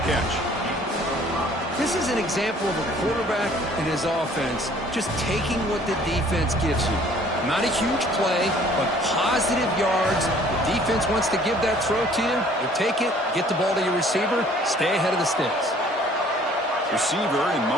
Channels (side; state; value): both; normal; correlation 0.55